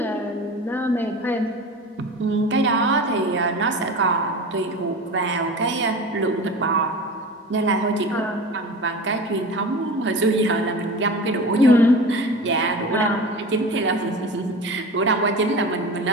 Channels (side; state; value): both; normal; correlation 0.33